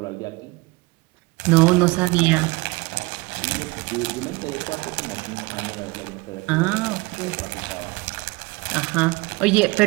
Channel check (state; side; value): quieter; left; 23.9 dB